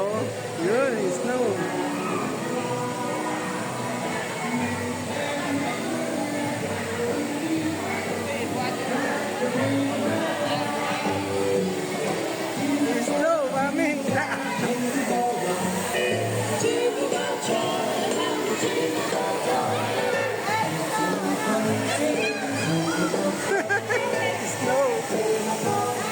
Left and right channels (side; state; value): both; identical; correlation 1.00